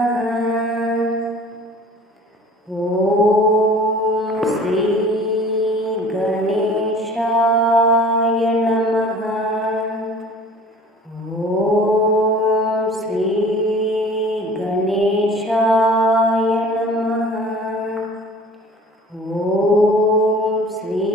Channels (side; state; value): both; normal; correlation 0.46